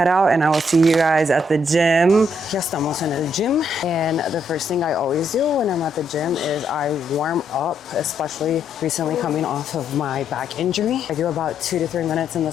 out and I will see you guys at the gym. Ya estamos en el gym. And the first thing I always do when I'm at the gym is I warm up, especially recently coming off of my back injury. I do about 2 to 3 minutes in the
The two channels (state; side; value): normal; both; correlation 0.74